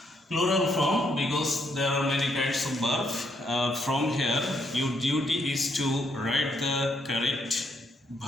Plural form because there are many kinds of verbs. From here, your duty is to write the correct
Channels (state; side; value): normal; both; correlation 0.74